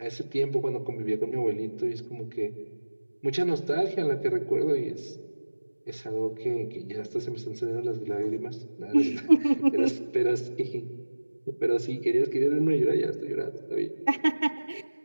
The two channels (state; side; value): inverted; both; correlation -1.00